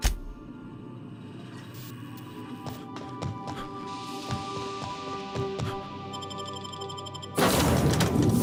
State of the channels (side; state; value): both; identical; correlation 1.00